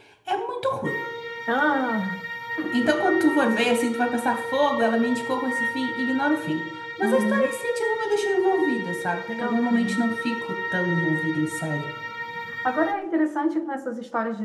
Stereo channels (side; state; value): both; identical; correlation 1.00